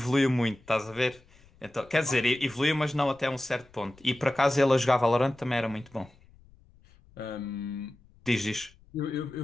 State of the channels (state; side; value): noise; left; rumble, 28 dB below the sound